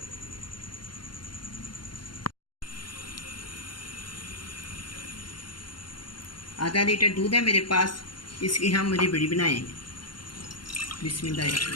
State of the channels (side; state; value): right; late; 0.72 ms